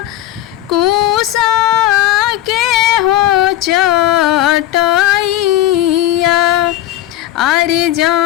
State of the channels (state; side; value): quieter; right; 14.0 dB